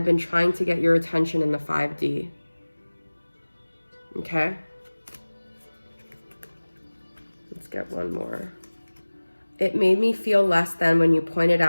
been trying to get your attention in the 5D. Okay? Let's get one more. It made me feel less than when you pointed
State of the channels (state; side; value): inverted; both; correlation -1.00